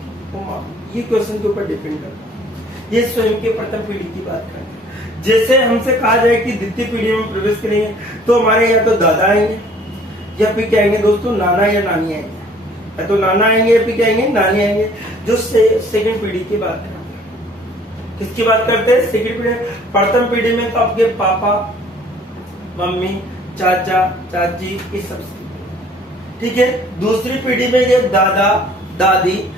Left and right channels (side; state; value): both; normal; correlation 0.55